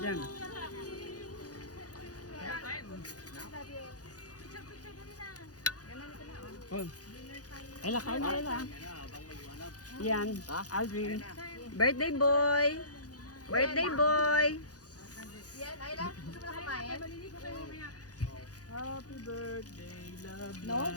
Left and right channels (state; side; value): late; right; 0.67 ms